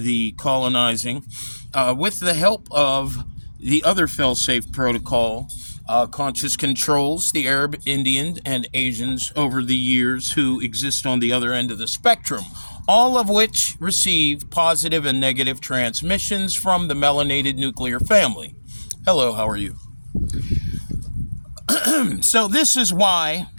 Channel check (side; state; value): both; inverted; correlation -1.00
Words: colonizing with the help of the other fail-safe protocol conscious controls, the Arab, Indian, and Asians over the years who exist on the other end of the spectrum, all of which receive positive and negative transmissions from the melanated nuclear family. Hello, how are you? So this is why